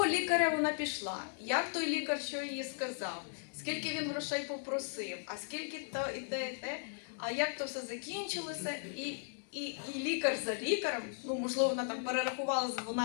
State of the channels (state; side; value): silent; right; digital silence